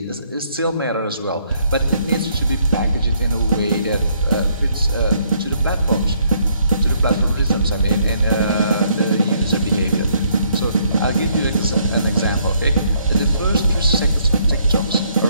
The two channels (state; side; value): inverted; both; correlation -0.68